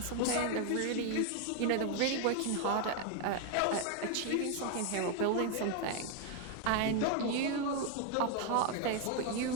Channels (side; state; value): both; different; correlation 0.01